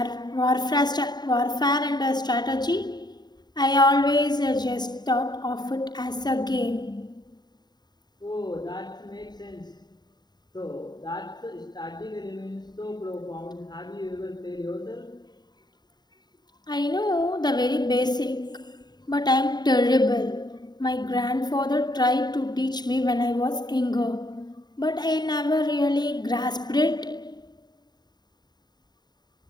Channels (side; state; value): right; late; 0.20 ms